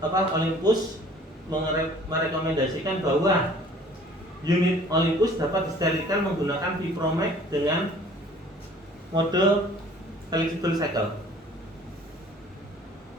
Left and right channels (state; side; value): normal; both; correlation 0.52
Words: Olympus merekomendasikan bahwa unit Olympus dapat disterilkan menggunakan Vipromax dengan mode flexible cycle.